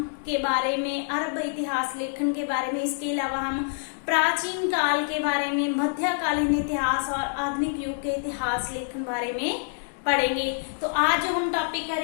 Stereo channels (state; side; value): silent; right; digital silence